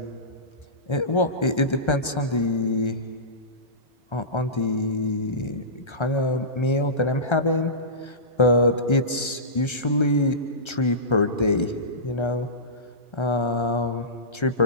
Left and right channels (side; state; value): right; late; 1.3 ms